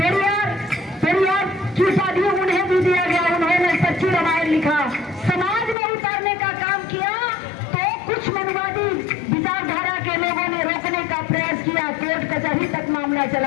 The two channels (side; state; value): right; drops out; at 5.8 s